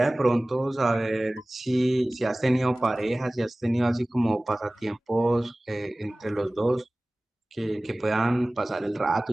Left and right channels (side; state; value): both; normal; correlation 0.98